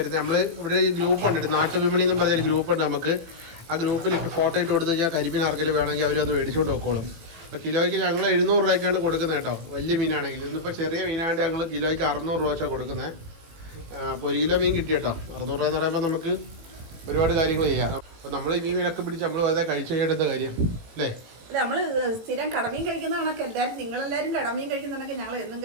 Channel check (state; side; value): late; left; 18 ms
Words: നമ്മൾ ഇവിടെ ഈ ഗ്രൂപ്പുണ്ട്, നാട്ടുവിപണി എന്നും പറഞ്ഞൊരു ഗ്രൂപ്പുണ്ട് നമുക്ക്. ആ ഗ്രൂപ്പിൽ ഇട്ട് ഫോട്ടോ ഇട്ട് കൊടുത്തു കഴിഞ്ഞാൽ കരിമീൻ ആർക്കെങ്കിലും വേണമെങ്കിൽ അവരൊന്ന് മേടിച്ചുകൊണ്ട് വെക്കോളും. അപ്പോൾ കിലോയ്ക്ക് ഞങ്ങൾ 700 രൂപയ്ക്കാണ് കൊടുക്കുന്നത് കേട്ടോ. വലിയ മീനാണെങ്കിൽ. ഇന്നിപ്പോൾ ചെറിയ മീനായിട്ട് ഞങ്ങൾ കിലോയ്ക്ക് 600 രൂപ വെച്ചാണ് കൊടുക്കുന്നത്. അപ്പോൾ 1 കിലോ മീൻ കിട്ടി കേട്ടോ. 600 രൂപ എന്ന് പറയുമ്പോൾ നമുക്ക് ഒരുപാട് കാര്യങ്ങൾ ചെയ്യാം. അപ്പോൾ നമ്മൾ ഈ മീനൊക്കെ പിടിച്ച് നമ്മൾ വെറുതെ കഴിച്ചു കഴിയേണ്ട കാര്യം അല്ലേ? അല്ല നമ്മൾ സ്ഥിരം കടമീൻ കഴിക്കുന്ന കണക്ക് എല്ലാവരും നിങ്ങളെല്ലാവരും കടമീൻ കഴിക്കുന്ന കണക്ക് ഞങ്ങൾ എന്നും